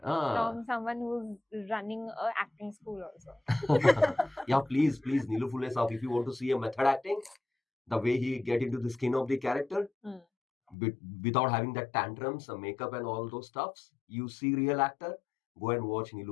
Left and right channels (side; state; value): right; drops out; at 10.8 s